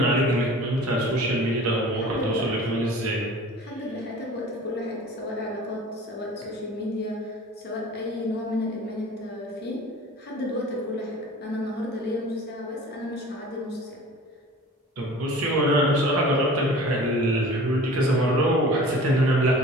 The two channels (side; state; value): both; normal; correlation 0.43